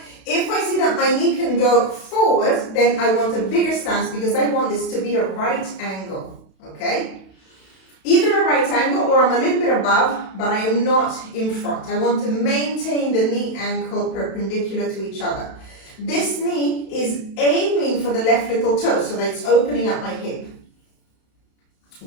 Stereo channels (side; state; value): right; late; 32 ms